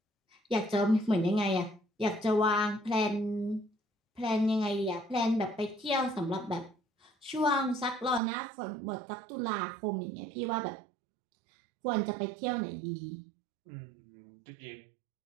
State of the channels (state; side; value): drops out; left; at 8.2 s